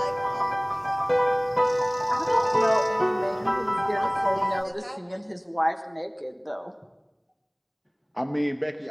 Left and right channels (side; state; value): both; identical; correlation 1.00